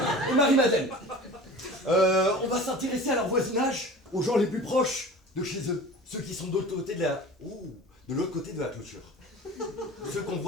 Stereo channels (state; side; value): normal; both; correlation 0.39